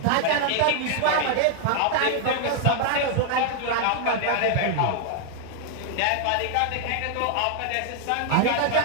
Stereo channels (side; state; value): both; different; correlation 0.00